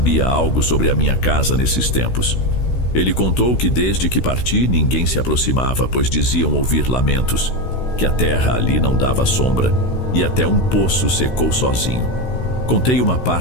algo sobre a minha casa nesses tempos. Ele contou que desde que parti ninguém se aproximava, pois diziam ouvir lamentos, que a terra ali não dava sombra e até um poço secou sozinho. Contei uma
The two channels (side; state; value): right; late; 16 ms